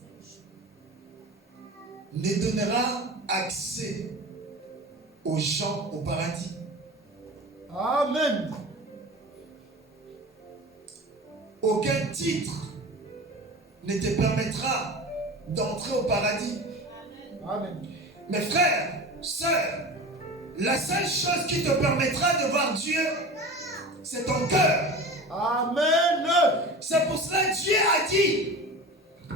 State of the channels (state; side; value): normal; both; correlation 0.33